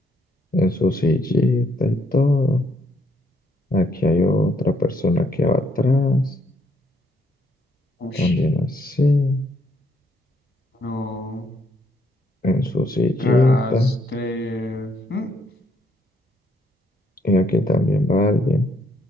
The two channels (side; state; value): both; normal; correlation 0.71